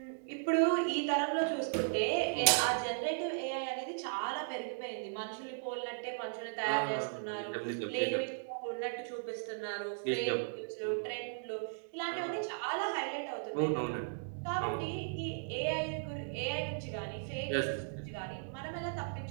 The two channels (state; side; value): silent; left; digital silence